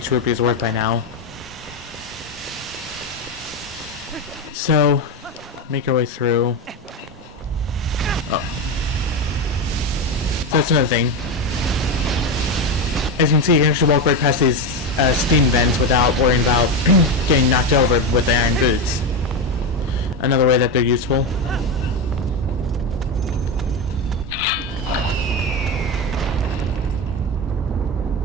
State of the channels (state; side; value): normal; both; correlation 0.14